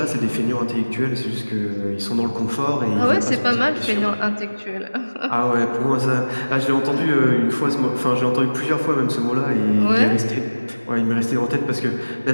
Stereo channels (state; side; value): inverted; both; correlation -1.00